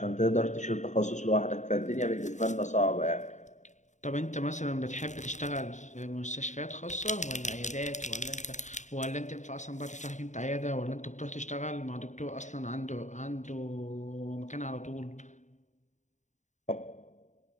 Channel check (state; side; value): late; right; 0.35 ms